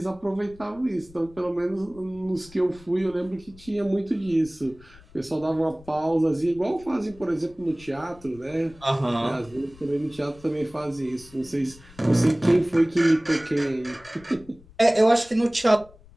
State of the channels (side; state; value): left; noise; rumble, 23 dB below the sound